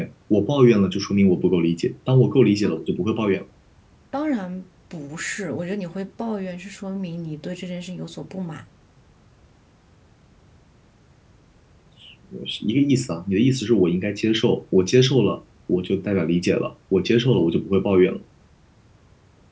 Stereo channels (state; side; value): identical; both; correlation 1.00